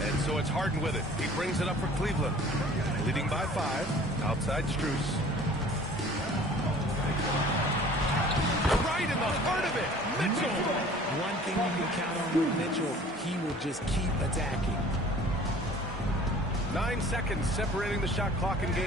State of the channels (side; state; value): both; normal; correlation 0.49